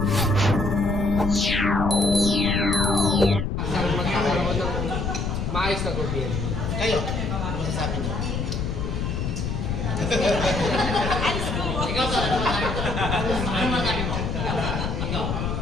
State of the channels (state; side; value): noise; left; rumble, 2 dB below the sound